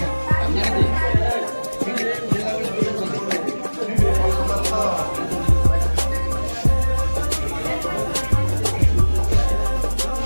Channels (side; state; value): both; inverted; correlation -1.00